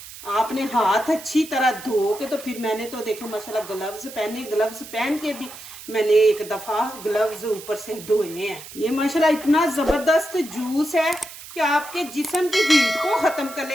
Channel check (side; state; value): right; noise; hiss, 15 dB below the sound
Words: आपने हाथ अच्छी तरह धो के, तो फिर मैंने तो देखे माशाल्लाह ग्लव्स पहने, ग्लव्स पहन के भी मैंने 1 दफा ग्लव्स ऊपर से धोए हैं। ये माशाल्लाह इतना जबरदस्त जूस है कि आपके जिस्म की हीट को खत्म